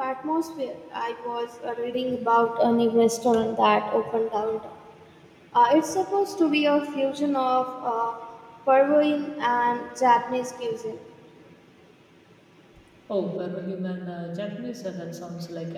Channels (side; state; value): both; identical; correlation 1.00